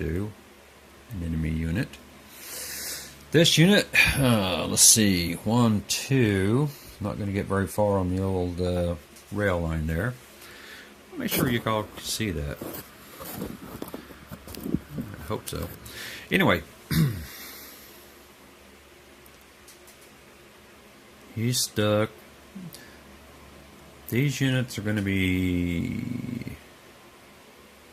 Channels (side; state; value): both; identical; correlation 1.00